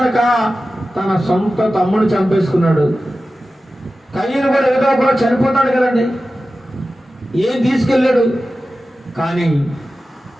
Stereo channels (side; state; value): both; normal; correlation 0.94